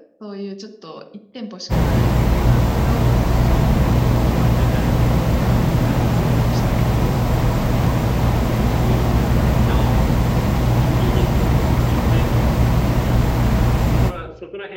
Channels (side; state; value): both; identical; correlation 1.00